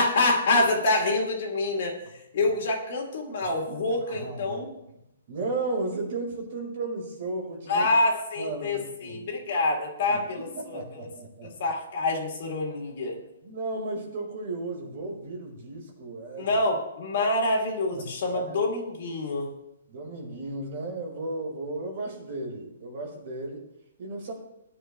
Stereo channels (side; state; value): both; inverted; correlation -0.54